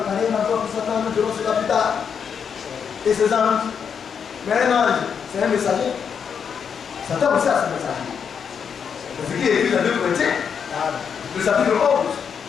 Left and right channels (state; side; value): quieter; right; 7.0 dB